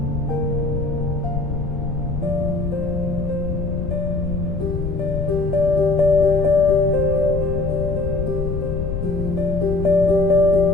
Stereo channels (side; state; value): left; noise; rumble, 3 dB below the sound